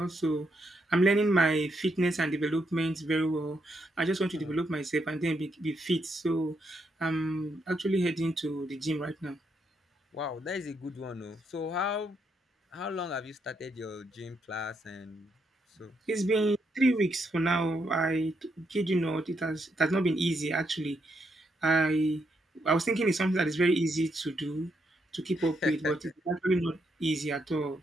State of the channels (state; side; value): normal; both; correlation 0.78